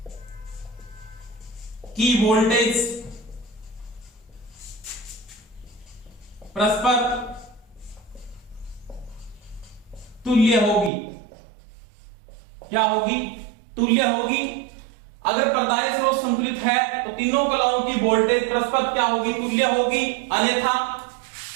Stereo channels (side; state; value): left; drops out; at 10.9 s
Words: की वोल्टेज परस्पर तुल्य होगी। क्या होगी? तुल्य होगी। अगर पर्दाए स्रोत संतुलित है तो तीनों कलाओं की वोल्टेज परस्पर क्या होगी? तुल्य होगी।